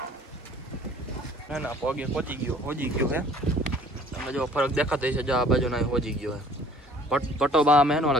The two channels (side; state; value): both; normal; correlation 0.53